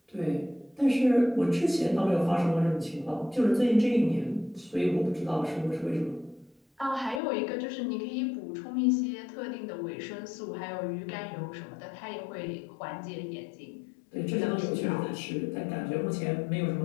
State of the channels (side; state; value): right; drops out; at 7.2 s